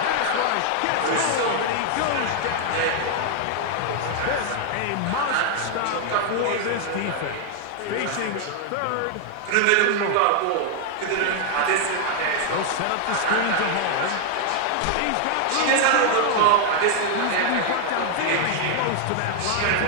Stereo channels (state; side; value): different; both; correlation 0.00